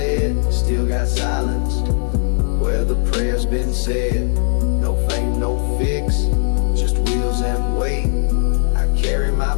Still got silence where the prayer's been said. No fame, no fix, just wheels and weight. I carry my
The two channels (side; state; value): right; silent; 67 dB below the other